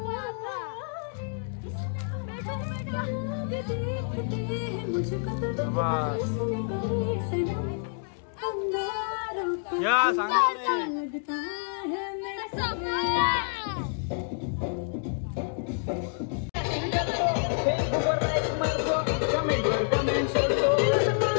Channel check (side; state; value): right; silent; 59 dB below the other